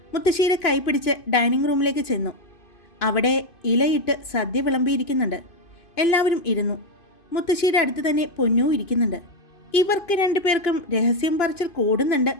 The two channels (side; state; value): right; late; 2.9 ms